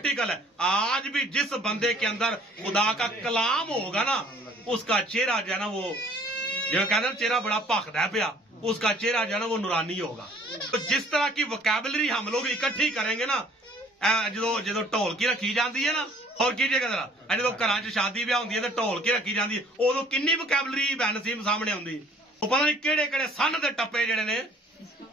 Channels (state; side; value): normal; both; correlation 0.56